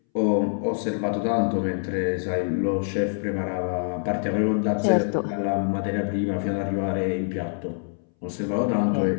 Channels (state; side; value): silent; right; 62 dB below the other